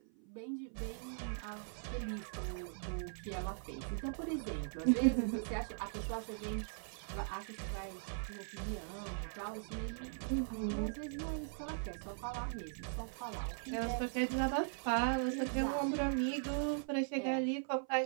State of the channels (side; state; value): left; silent; 51 dB below the other